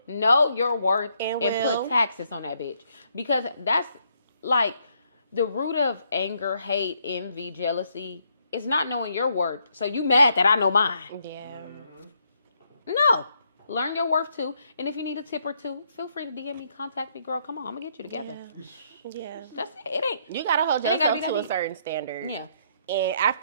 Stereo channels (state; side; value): inverted; both; correlation -0.72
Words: Know your worth and put taxes on that bitch. Because that's like the root of anger, hate, envy, jealousy is not knowing your worth. So you mad that I know mine. Yeah. No. Learn your worth too. And if you need a tip or two, feel free to DM me, contact me, girl. Come on, I'm gonna get you together. Yeah. That's it. It ain't. You gotta hold yourself to a certain standard. Yeah. And